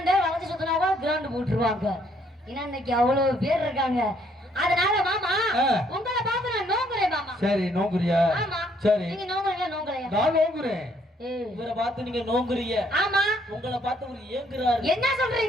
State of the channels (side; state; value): both; normal; correlation 0.68